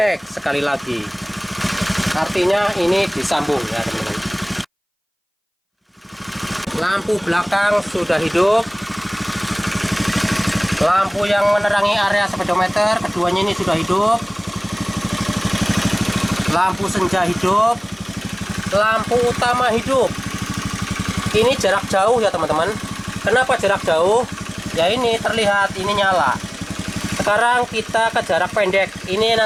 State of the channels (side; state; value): both; identical; correlation 1.00